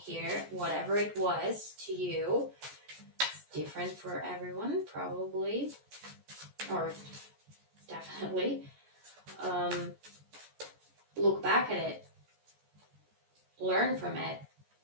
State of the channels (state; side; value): late; left; 14 ms